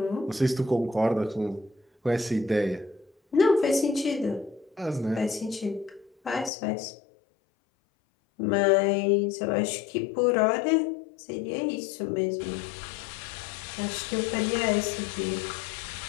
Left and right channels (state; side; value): drops out; right; at 6.5 s